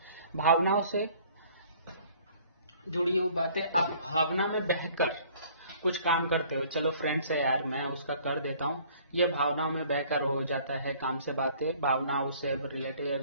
भावनाओं से जुड़ी हुई बातें। आप भावना में बहकर कुछ काम करते हो, चलो फ्रेंड्स है यार मैं उसका कर देता हूँ, ये भावनाओं में बहकर हो जाता है काम से बातें। भावनाओं से रिलेटेड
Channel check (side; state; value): both; inverted; correlation -0.55